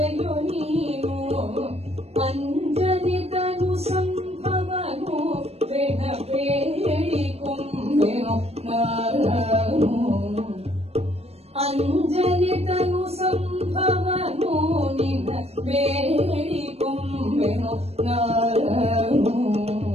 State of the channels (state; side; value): late; left; 0.30 ms